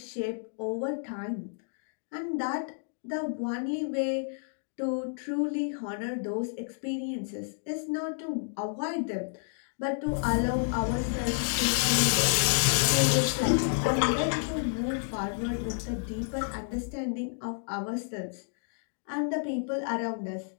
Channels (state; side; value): silent; right; digital silence